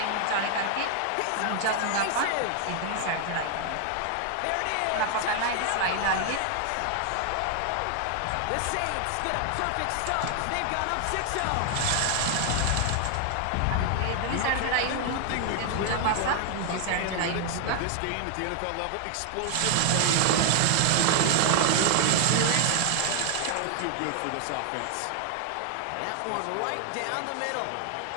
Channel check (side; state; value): both; different; correlation 0.00